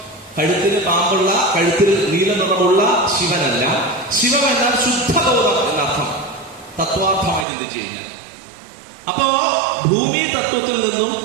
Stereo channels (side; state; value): left; drops out; at 7.5 s